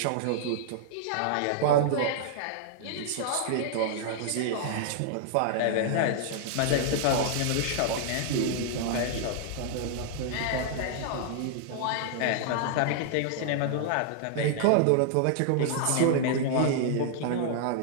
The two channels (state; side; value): different; both; correlation -0.01